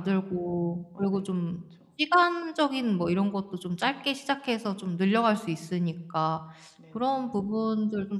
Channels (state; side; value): identical; both; correlation 1.00